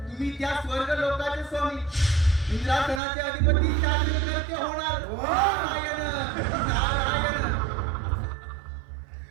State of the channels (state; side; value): drops out; left; at 3.0 s